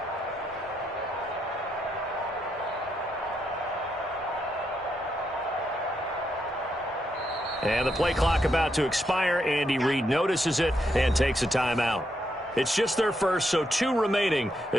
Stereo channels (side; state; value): both; normal; correlation 0.80